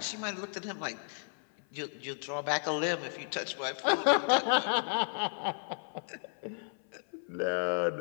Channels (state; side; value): silent; right; 56 dB below the other